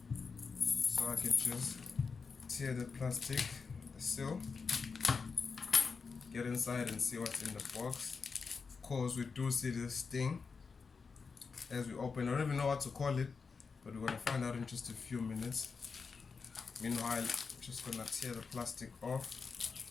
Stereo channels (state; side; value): quieter; right; 5.1 dB